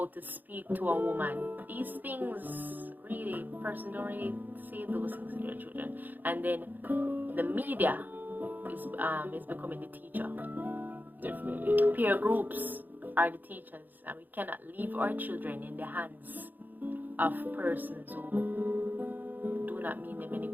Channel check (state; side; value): late; left; 0.086 ms